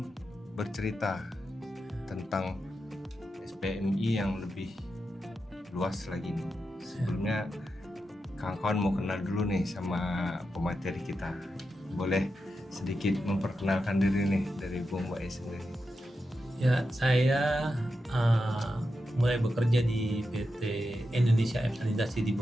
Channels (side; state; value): both; normal; correlation 0.88